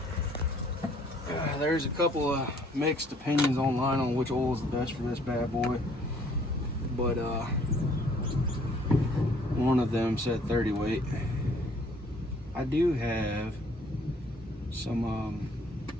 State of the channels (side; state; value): both; normal; correlation 0.60